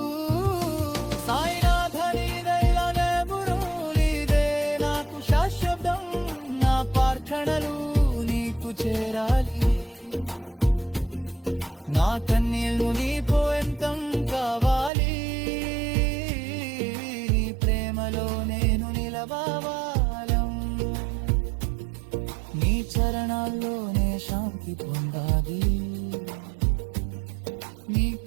సాయినాథ నీదైలనే బురులీదే నాకు శాశ్వతం, నా ప్రార్థనలు నీకు చేరాలి. నా కన్నీళ్ళు నీ పోయంతం కావాలి, నీ ప్రేమలో నేను నిలవాలం. నీ చరణాల్లోనే శాంతి పొందాలి. నీ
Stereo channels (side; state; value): left; drops out; at 14.9 s